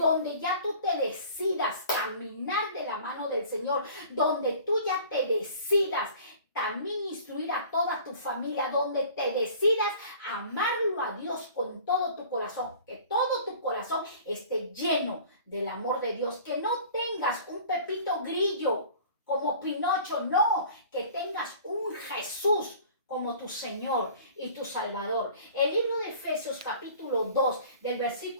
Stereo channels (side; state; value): both; inverted; correlation -0.46